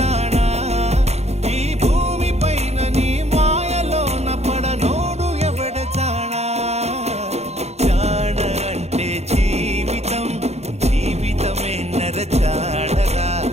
ఈ భూమి పైన నీ మాయలోన పడనోడు ఎవడ జానా జాణ అంటే జీవితం జీవితమే నర జాడరా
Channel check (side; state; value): left; late; 0.31 ms